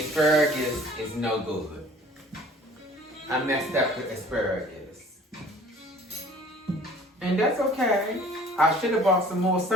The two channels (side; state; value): both; normal; correlation 0.51